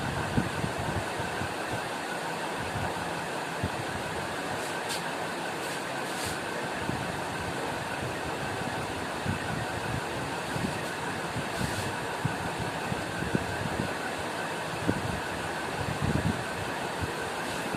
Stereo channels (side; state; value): both; identical; correlation 1.00